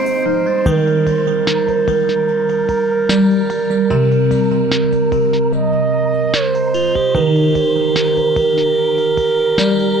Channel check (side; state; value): both; normal; correlation 0.63